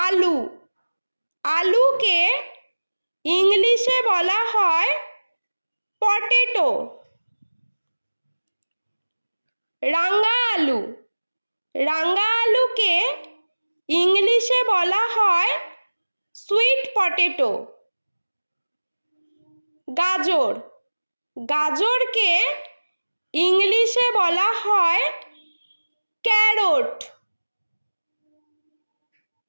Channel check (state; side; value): inverted; both; correlation -1.00